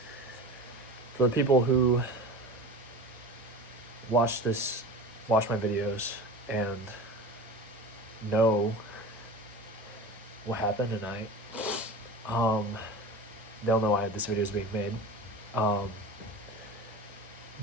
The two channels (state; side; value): normal; both; correlation 0.32